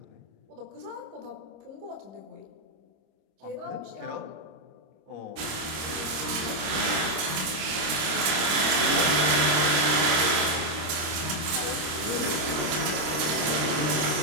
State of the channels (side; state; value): left; late; 25 ms